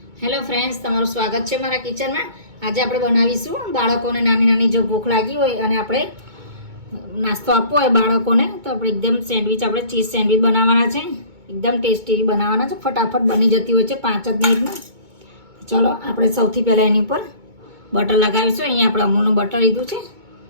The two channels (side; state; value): left; late; 2.2 ms